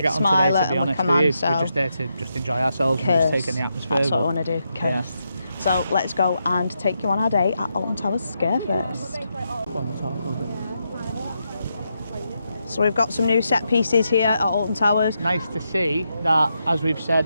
Smiler and Command. So we're just there to just enjoy ourselves and just take in the atmosphere. That's what I want to do. Curse. So let's go and take you on our day at Alton Towers Scarefest. So we've got some new set pieces here at Alton Towers. Nice to see that, as we've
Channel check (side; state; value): both; inverted; correlation -0.83